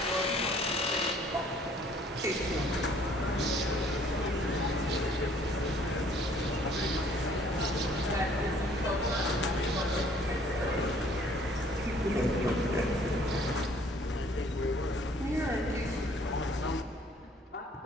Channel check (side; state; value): both; normal; correlation 0.58